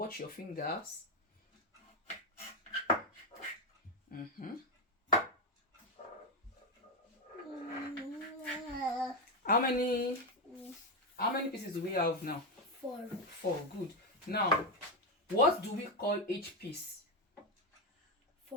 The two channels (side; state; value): both; normal; correlation 0.07